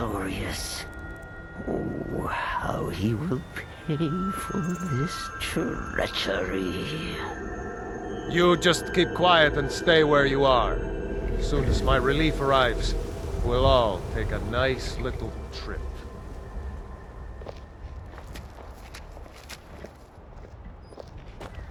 Oh, how he will pay for this treachery. You just keep quiet and stay where you are. As soon as my relief arrives, we'll all take a nice little trip.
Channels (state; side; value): identical; both; correlation 1.00